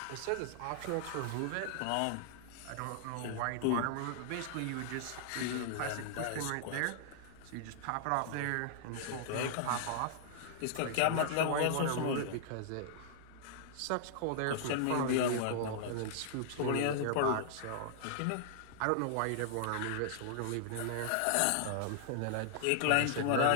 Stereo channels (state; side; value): different; both; correlation -0.01